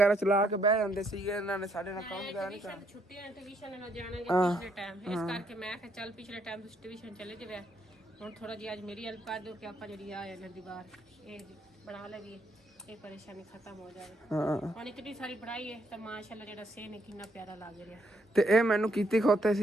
ਚਲਾ ਕੇ ਬਹਿ ਜਾਂਦੇ ਸੀਗੇ, ਇਹਨਾਂ ਨੇ ਸਾਡੇ ਨਾਲ ਕੰਮ ਵਗੈਰਾ ਨਹੀਂ ਕਰਨਾ। ਛੁੱਟੀਆਂ ਟਿਊਸ਼ਨ ਨਾਲ ਜਾਣਾਂਗੇ ਪਿਛਲੇ ਟਾਈਮ, ਇਸ ਕਰਕੇ ਮੈਂ ਕਿਹਾ ਚੱਲ ਪਿਛਲੇ ਟਾਈਮ ਤੁਸੀਂ ਟਿਊਸ਼ਨ ਚਲੇ ਜਾਵੇ, ਹੁਣ ਥੋੜਾ ਜਿਹਾ ਅੱਜ ਮੇਰੀ ਹੈਲਪ ਕਰ ਦਿਓ ਕਿ ਆਪਾਂ ਜਿਹੜੀ ਆ ਇਹਨਾਂ ਦੀਵਾਰ ਇਹ ਬਣਾ ਲਈਏ, ਇਹ ਪਰੇਸ਼ਾਨੀ ਖਤਮ ਹੋ ਜਾਵੇ। ਹੁਣ ਇਤਨੀ ਸਾਰੀ ਪੜਾਈ ਹੈ ਤਾਂ ਮਾਸ਼ਾਅੱਲਾ ਜਿਹੜਾ ਸੇ ਨੇ ਕਿੰਨਾ ਪਿਆਰਾ ਲੱਗ ਰਿਹਾ। ਤੇ ਇਹ ਮੈਨੂੰ ਕੀਤੀ ਖੋਤੇ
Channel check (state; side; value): normal; both; correlation 0.72